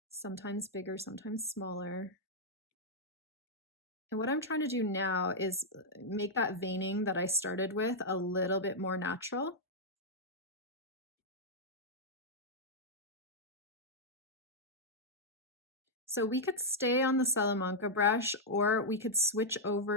Sometimes bigger, sometimes smaller. And what I'm trying to do now is make that veining that I started with a little bit more natural. So we could stay on the Salamanca brush, or we could switch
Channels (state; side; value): normal; both; correlation -0.06